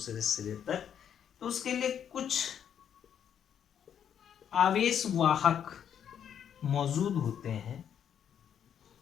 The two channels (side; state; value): right; quieter; 8.8 dB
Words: सिरे तक, तो उसके लिए कुछ आवेश वाहक मौजूद होते हैं